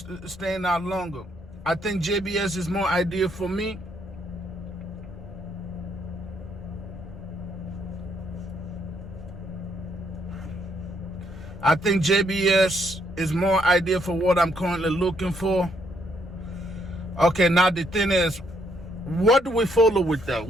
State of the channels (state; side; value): normal; both; correlation 0.72